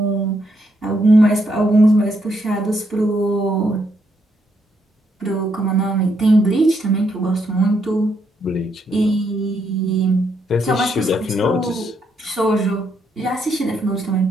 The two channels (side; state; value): both; normal; correlation 0.76